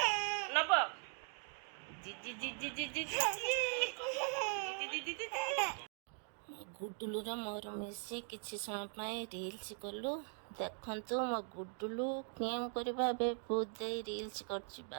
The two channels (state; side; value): silent; left; 51 dB below the other